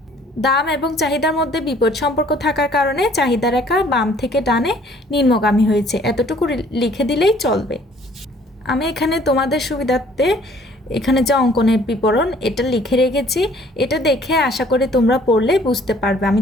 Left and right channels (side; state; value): both; normal; correlation 0.57